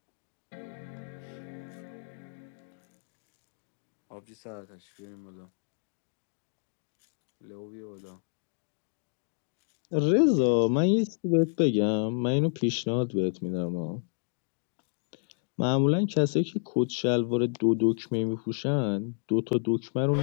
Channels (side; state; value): right; silent; 58 dB below the other